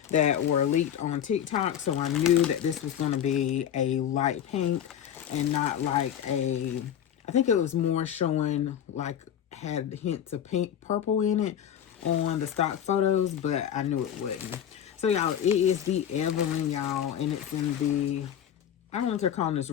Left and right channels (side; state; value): right; quieter; 9.6 dB